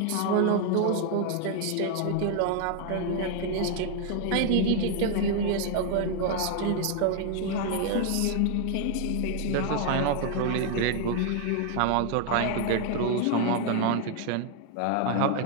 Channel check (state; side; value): different; both; correlation 0.00